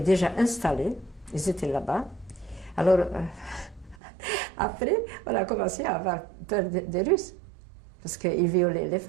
déjà installés, ils étaient là-bas. Alors, après, on a commencé à avoir peur des Russes. Parce qu'ils violaient les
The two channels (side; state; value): left; drops out; at 4.0 s